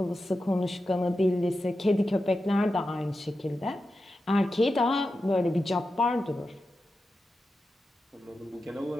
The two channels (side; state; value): both; normal; correlation 0.91